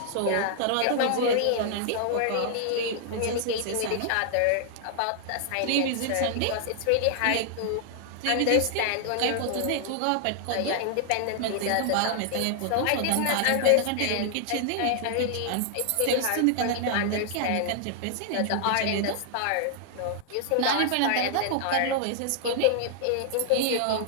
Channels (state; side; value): different; both; correlation -0.01